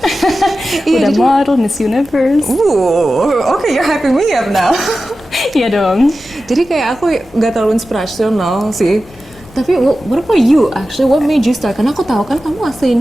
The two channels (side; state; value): both; normal; correlation 0.94